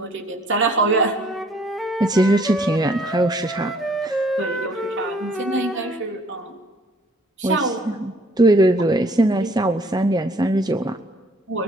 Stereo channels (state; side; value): normal; both; correlation 0.60